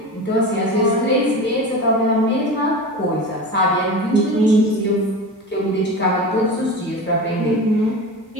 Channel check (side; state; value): both; normal; correlation 0.29